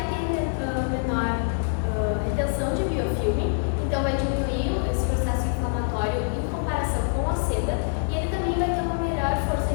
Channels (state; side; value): silent; right; digital silence